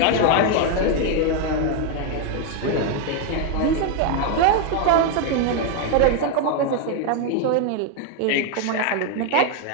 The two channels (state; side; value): different; both; correlation 0.01